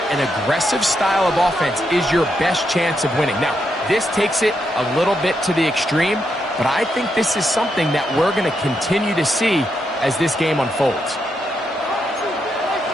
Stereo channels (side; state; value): both; normal; correlation 0.81